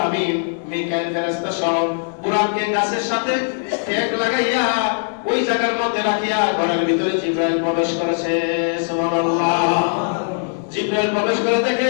আমিন মিকাইল ফেরেশতা সহ বুরাককে গাছের সাথে ঠেক লাগাইয়া ওই জায়গার মধ্যে রাখিয়া ঘরের ভিতরে জিবরাইল প্রবেশ করেছে। সুবহানাল্লাহ। জিবরাইল প্রবেশ করে দেখে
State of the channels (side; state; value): right; silent; 57 dB below the other